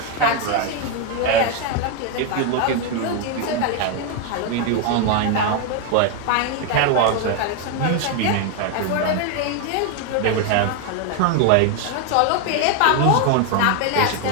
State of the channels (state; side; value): different; both; correlation 0.01